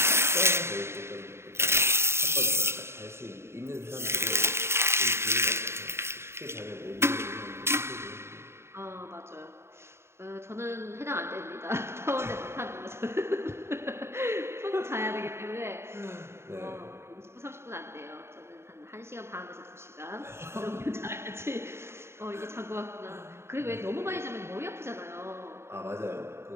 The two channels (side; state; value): left; late; 0.12 ms